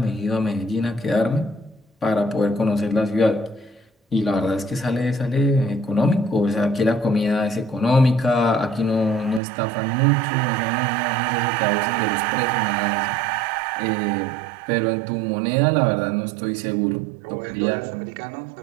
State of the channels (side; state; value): left; drops out; at 9.4 s